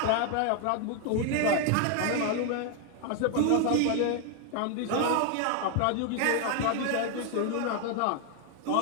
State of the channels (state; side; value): different; both; correlation 0.01